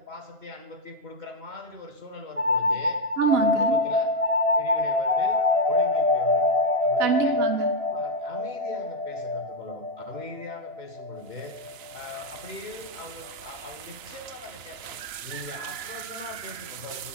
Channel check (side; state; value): left; late; 3.0 ms